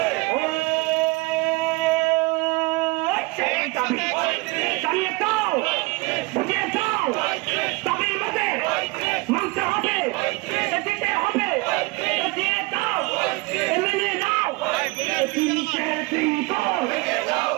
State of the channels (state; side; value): quieter; left; 24.5 dB